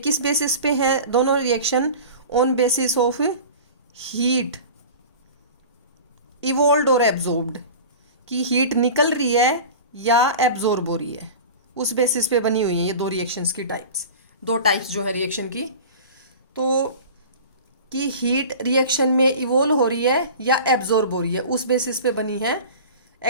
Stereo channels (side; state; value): both; inverted; correlation -0.36